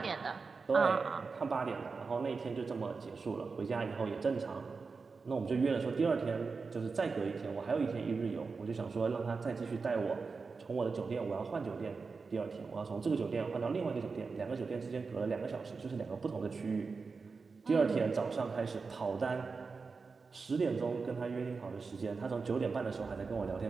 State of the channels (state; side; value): quieter; left; 4.6 dB